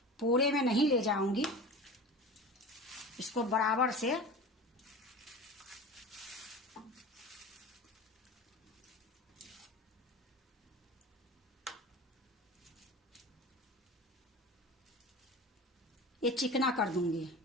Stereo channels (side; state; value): both; normal; correlation 0.33